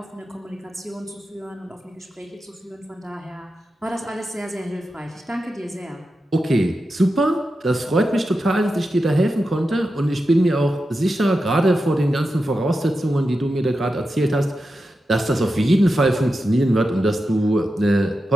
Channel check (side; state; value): both; normal; correlation 0.90